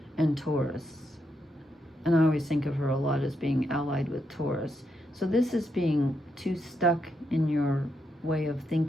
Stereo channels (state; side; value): normal; both; correlation 0.81